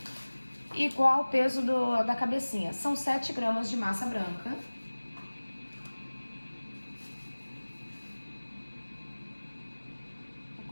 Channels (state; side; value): inverted; both; correlation -1.00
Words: Igual o peso da cabecinha. São 7 gramas de massa branca. Eu